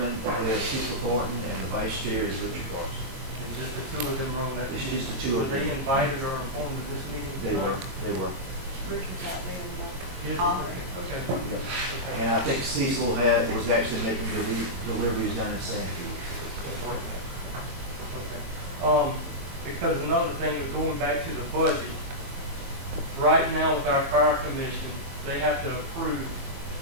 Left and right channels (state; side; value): late; left; 22 ms